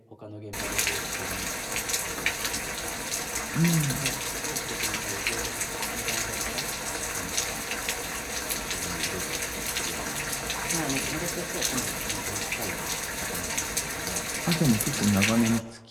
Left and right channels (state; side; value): identical; both; correlation 1.00